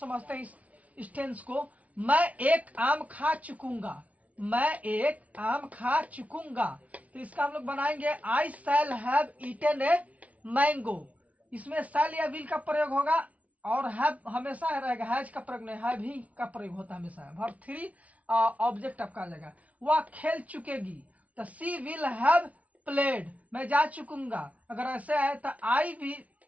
हैं इस टेंस को। मैं एक आम खा चुकूंगा, मैं एक आम खा चुकूंगा, तो इसका हम लोग बनाएंगे I shall have eaten a mango. इसमें शैल या विल का प्रयोग होगा और हैव हमेशा रहेगा, हैज का प्रयोग नहीं, हैव ही का प्रयोग होता है हमेशा। वर्ब 3 ऑब्जेक्ट आपका आ जाएगा। वह खेल चुकेगी, तो सी विल हैव प्लेड, मैं जा चुकूंगा। अगर ऐसे आए तो आई भी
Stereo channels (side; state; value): left; late; 0.068 ms